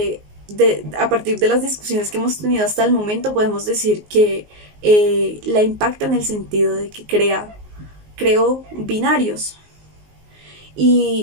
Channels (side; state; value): left; late; 19 ms